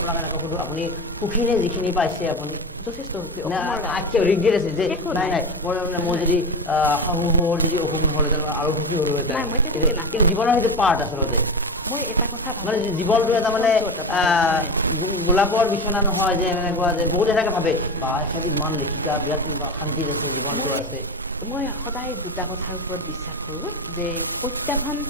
এনেকৈ সুধো আপুনি সুখী নে যিখিনি পাইছে আপুনি যথেষ্ট ৰিগ্ৰেট আছে যে নাই মই যদি শাহুৰ যদি অসুখ নহ'লেহেঁতেন আৰু সুখী হ'লোহেঁতেন কিন্তু জীৱনৰ সেইটো পাৰ্ট আচলতে মই এটা কথা মানে জীৱনটো এটা মানে গোলাপৰ বিচনা নহয় যে এনেকুৱা যে বহুত এনেকৈ ভাবে বা এখেত ইমান লেখিকা বিৰাট শান্তিত আছে জীৱনটো আছে মই সদায় দুটা কথাৰ ওপৰত বিশ্বাস কৰোঁ যে প্ৰত্যাহ্বান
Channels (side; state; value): both; normal; correlation 0.22